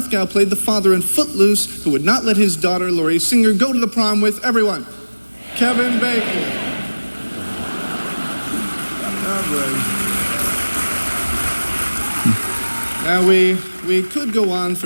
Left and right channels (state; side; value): inverted; both; correlation -1.00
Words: played the father in Footloose who would not let his daughter, Laurie Singer, go to the prom with everyone. Kevin Bacon. Now, we could go on